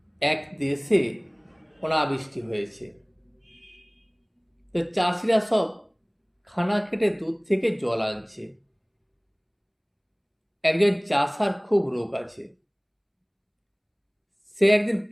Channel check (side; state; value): both; identical; correlation 1.00